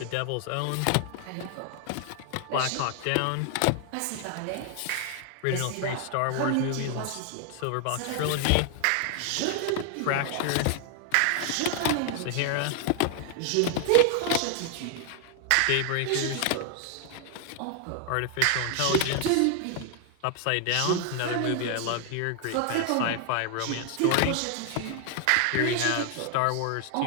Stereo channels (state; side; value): different; both; correlation 0.00